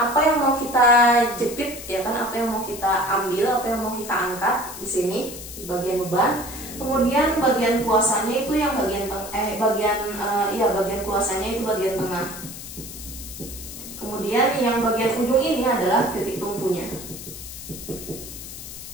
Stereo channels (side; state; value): left; noise; hiss, 12 dB below the sound